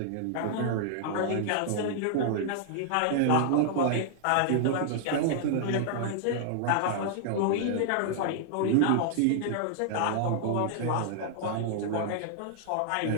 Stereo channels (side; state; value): both; different; correlation -0.01